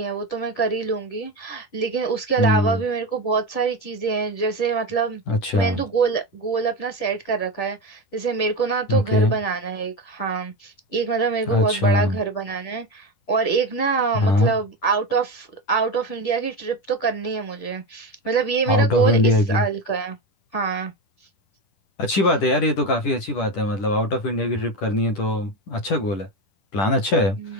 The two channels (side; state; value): right; late; 10 ms